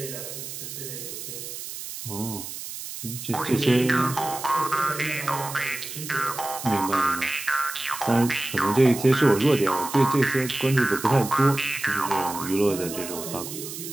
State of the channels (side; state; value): right; noise; hiss, 9 dB below the sound